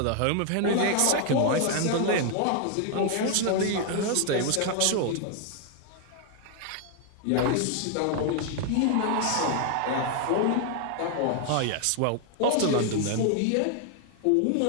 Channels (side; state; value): both; different; correlation 0.00